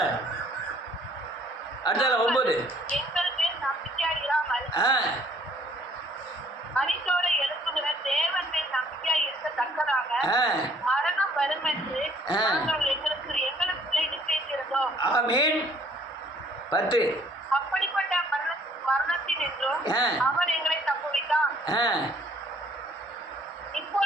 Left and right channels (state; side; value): normal; both; correlation 0.60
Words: அடுத்தால 9. எங்கள் மேல் நம்பிக்கையாய் இராமல் மரித்தோரை எழுப்புகிற தேவன் மேல் நம்பிக்கையாய் இருக்கத்தக்கதாக மரணம் வரும் என்று நாங்கள் எங்களுக்குள்ளே நிச்சயித்திருந்தோம். ஆமென். 10. அப்படிப்பட்ட மரணத்தின் என்றும் அவர் எங்களை தப்புவித்தார்,